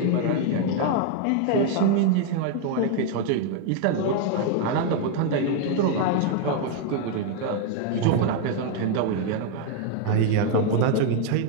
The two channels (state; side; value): different; both; correlation 0.00